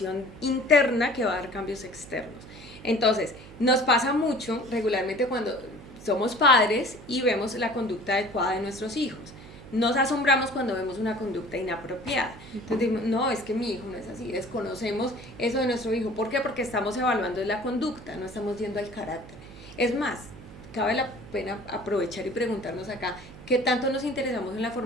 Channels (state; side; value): noise; right; hum, 17 dB below the sound